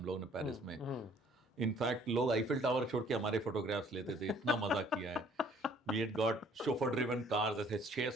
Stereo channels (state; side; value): normal; both; correlation 0.58